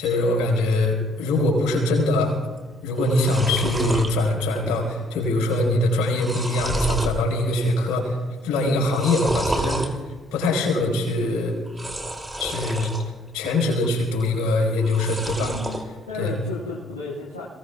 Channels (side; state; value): both; normal; correlation 0.61